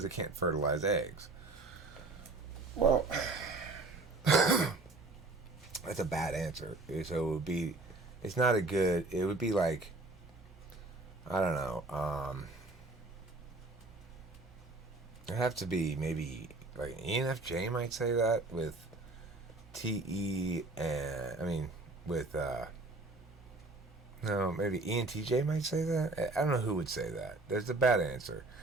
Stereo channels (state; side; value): quieter; left; 3.1 dB